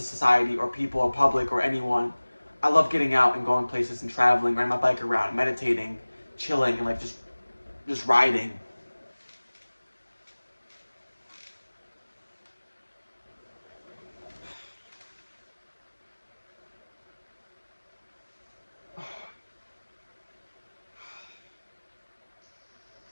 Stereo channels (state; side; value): inverted; both; correlation -1.00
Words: or people or public or anyone. I love getting out and going places and traveling, riding my bike around, meditating, chilling, and like just riding.